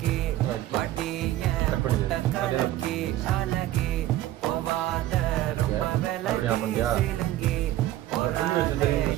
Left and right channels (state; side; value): quieter; left; 14.4 dB